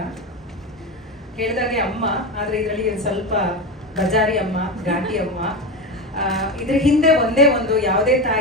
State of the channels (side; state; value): both; normal; correlation 0.19